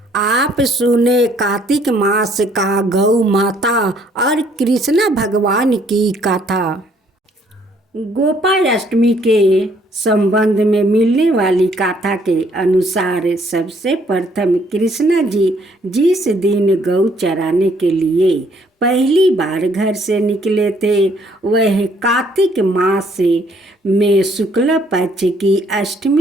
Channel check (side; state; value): both; normal; correlation 0.65